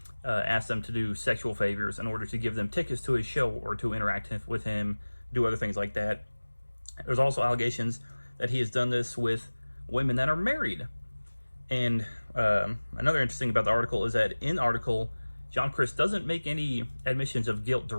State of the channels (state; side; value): inverted; both; correlation -1.00